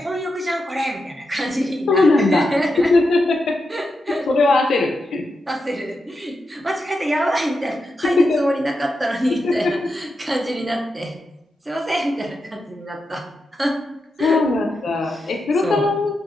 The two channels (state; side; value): normal; both; correlation 0.87